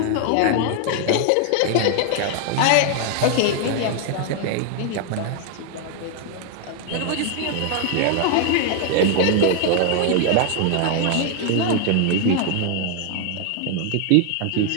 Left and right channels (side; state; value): both; different; correlation 0.00